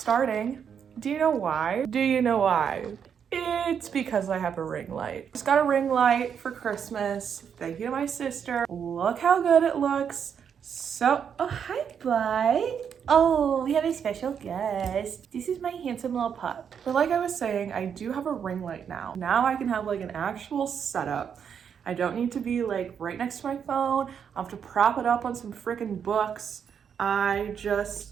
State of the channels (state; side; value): quieter; left; 7.6 dB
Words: Do you know why? Do you know why? It's because I have a ring light. Just got a ring light for Christmas. Thank you to my sister. Look how good it looks. So, oh, hi, bud. Oh, we have a special guest. This is my handsome little pup. But like I was saying, I do have a ring light now. Now I can have like an actual setup. I don't need to be like right next to my phone. I'll have to prop it up on some freaking books. I